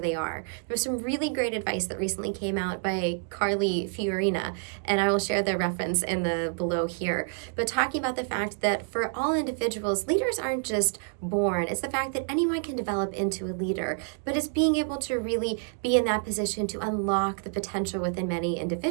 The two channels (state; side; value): silent; left; 59 dB below the other